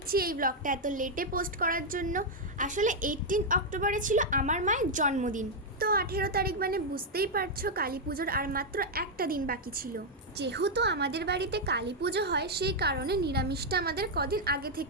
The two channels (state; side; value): normal; both; correlation -0.01